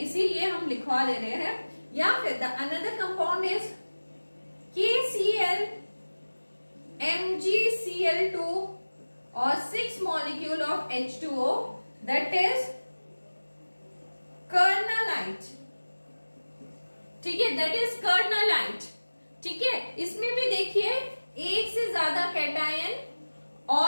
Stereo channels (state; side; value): inverted; both; correlation -1.00